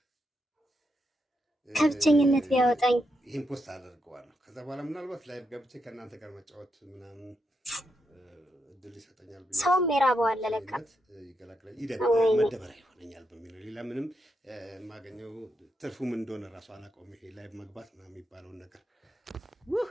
ከብቸኝነት ቢያወጣኝ ይህን ፖስት አደርገዋለሁ። ከዛ በኋላ ምናልባት ላይቭ ገብቼ ከእናንተ ጋር መጫወት ምናምን እድል ይሰጠኛል ብዬ ሰውም የራበው አለ ለካ ይገላግላል መደበሪያ ይሆነኛል በሚለው ሌላ ምንም የማገኘው ትርፉም እንደሆነ ራሱ አላውቀውም። ይሄ ላይቭ መግባት ምናምን የሚባለውን ነገር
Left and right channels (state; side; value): normal; both; correlation 0.82